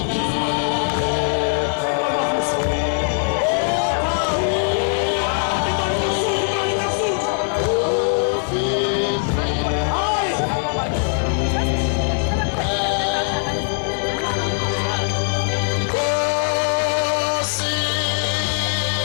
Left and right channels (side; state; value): right; silent; 65 dB below the other